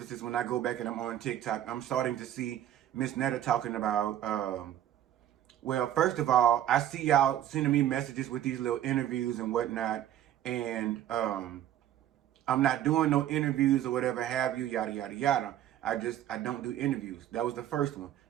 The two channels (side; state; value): left; quieter; 11.7 dB